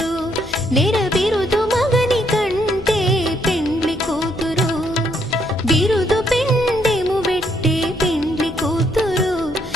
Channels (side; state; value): left; noise; hum, 16 dB below the sound